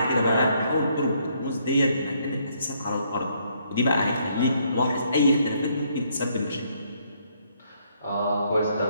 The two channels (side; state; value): both; inverted; correlation -0.70